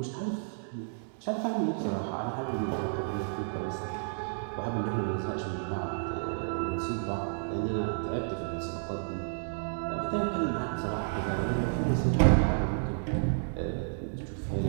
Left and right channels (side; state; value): left; silent; digital silence